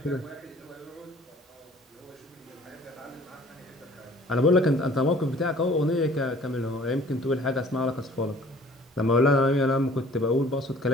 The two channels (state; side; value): normal; both; correlation 0.52